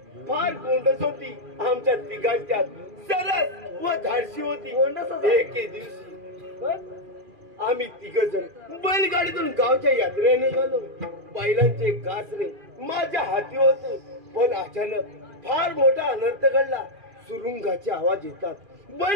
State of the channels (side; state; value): left; late; 2.4 ms